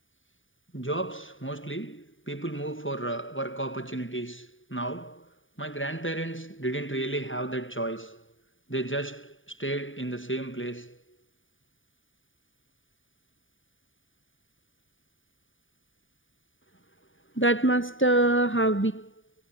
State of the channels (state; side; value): late; right; 0.57 ms